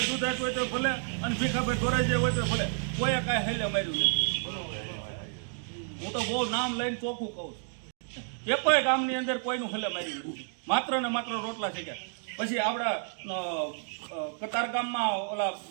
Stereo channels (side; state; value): left; silent; 58 dB below the other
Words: દુધાત હોય તો ભલે, અને ભીખાભાઈ ધોરાજી હોય તો ભલે, કોઈ કાંઈ હેલે માર્યું નથી. હું તો બહુ નામ લઈને ચોખ્ખું કહું છું, એ કોઈ ગામની અંદર કોઈનું હેલે માર્યું નથી. માત્ર ને માત્ર રોટલા શેક્યા. પછી આપણા કતારગામમાં ઓલા